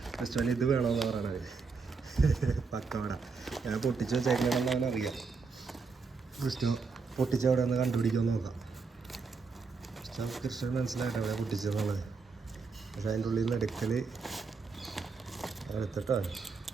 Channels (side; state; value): left; quieter; 4.7 dB